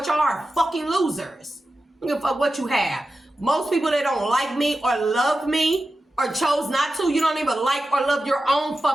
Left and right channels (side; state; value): both; normal; correlation 0.92